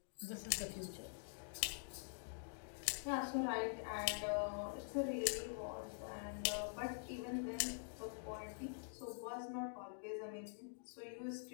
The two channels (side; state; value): right; silent; digital silence